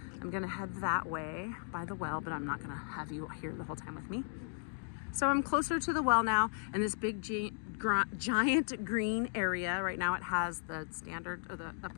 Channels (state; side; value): silent; right; 54 dB below the other